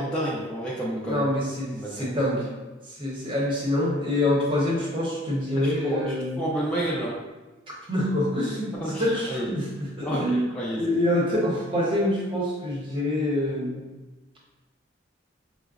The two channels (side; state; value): both; normal; correlation 0.54